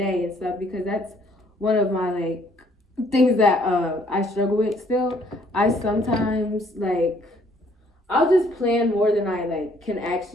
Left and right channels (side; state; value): both; normal; correlation 0.64